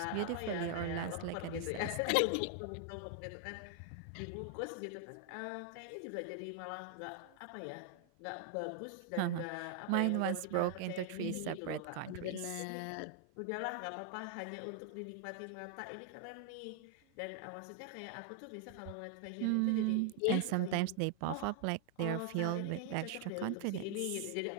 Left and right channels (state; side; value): different; both; correlation 0.00